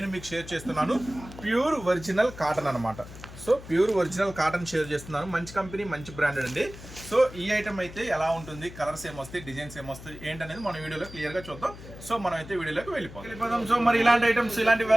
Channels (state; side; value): noise; left; hum, 15 dB below the sound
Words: మీకు షేర్ చేస్తున్నాను ప్యూర్ ఒరిజినల్ కాటన్ అనమాట. So pure original cotton share చేస్తున్నాను. మంచి కంపెనీ, మంచి బ్రాండెడ్ అండి. సో ఈ ఐటమ్ అయితే ఎలా ఉంటుంది, కలర్స్ ఏమొస్తాయి, డిజైన్స్ ఏమొస్తాయి ఏంటనేది మన వీడియోలో క్లియర్గా చూద్దాం. సో మనం అయితే వీడియోలోకి వెళ్ళిపోతాం. సో మరి ఇలాంటి ఐటమ్స్, ఇలాంటి